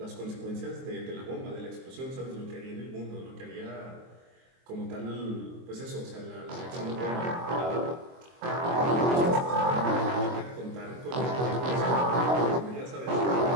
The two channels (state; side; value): late; left; 23 ms